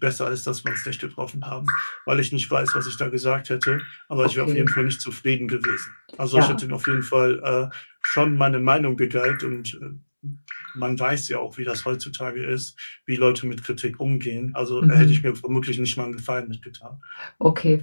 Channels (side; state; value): both; inverted; correlation -1.00